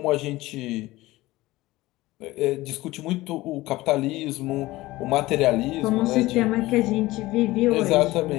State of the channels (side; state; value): right; quieter; 18.6 dB